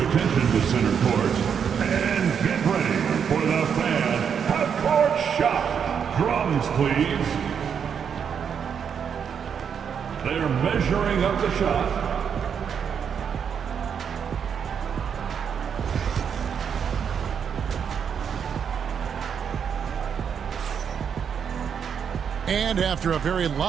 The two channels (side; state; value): left; quieter; 7.4 dB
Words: attention to center court and get ready for the fan half-court shot. Drums, please. They're measuring up the shot. And after a very